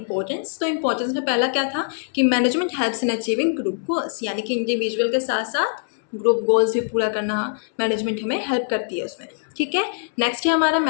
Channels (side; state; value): right; silent; 64 dB below the other